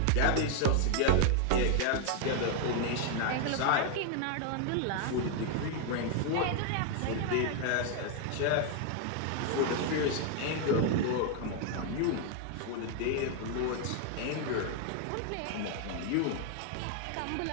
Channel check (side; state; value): both; different; correlation 0.00